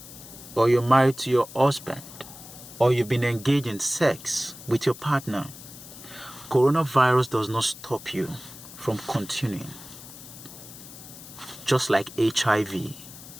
or you're married to your husband, or you've been engaged in sex with your partner, coronavirus does not stop you from continuing. Just like HIV,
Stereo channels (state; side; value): noise; left; hiss, 16 dB below the sound